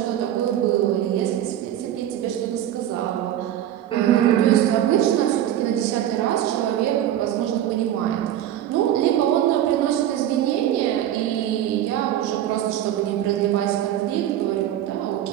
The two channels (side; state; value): left; quieter; 11.8 dB